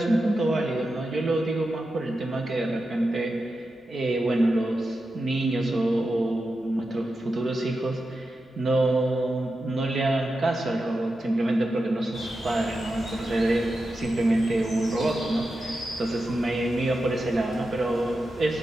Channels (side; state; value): both; normal; correlation 0.90